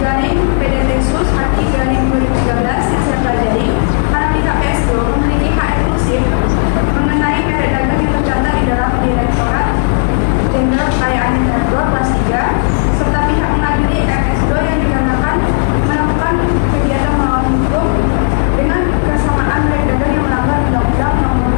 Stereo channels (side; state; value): right; silent; digital silence